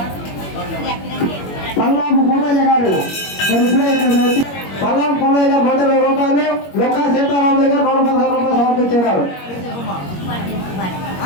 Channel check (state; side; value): late; right; 21 ms